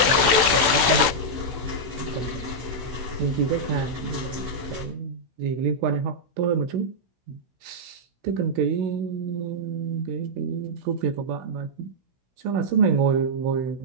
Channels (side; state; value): left; late; 16 ms